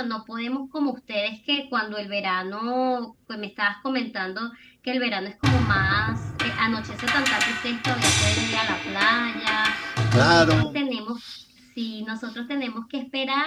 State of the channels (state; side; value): identical; both; correlation 1.00